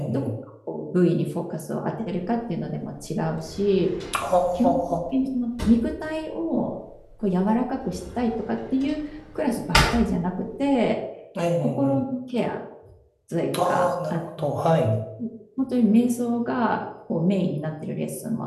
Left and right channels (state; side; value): identical; both; correlation 1.00